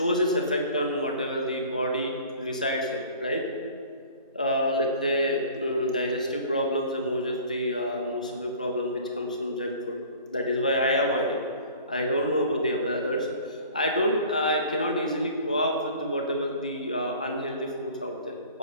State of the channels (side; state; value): both; inverted; correlation -0.46